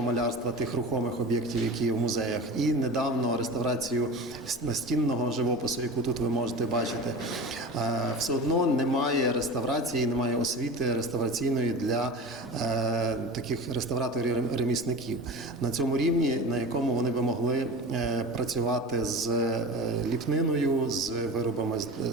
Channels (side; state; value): both; normal; correlation 0.32